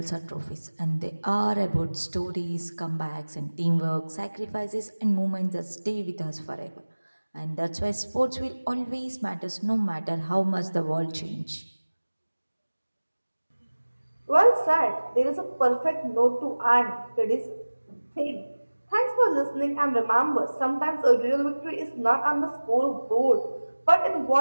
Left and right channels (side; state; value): both; inverted; correlation -1.00